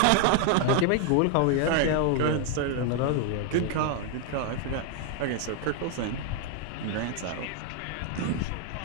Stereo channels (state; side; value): different; both; correlation 0.00